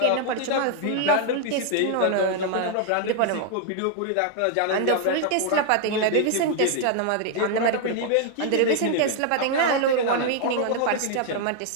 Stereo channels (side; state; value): both; different; correlation 0.00